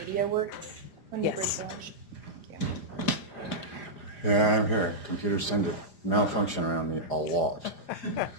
works when you break for lunch? Yeah, I'm here. Computers tend to malfunction around me a lot.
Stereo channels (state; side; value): late; right; 4.9 ms